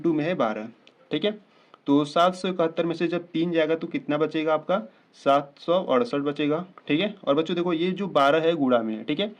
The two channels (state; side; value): identical; both; correlation 1.00